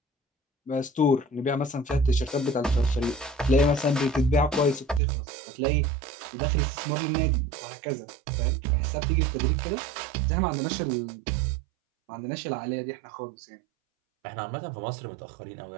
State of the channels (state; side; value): drops out; left; at 5.0 s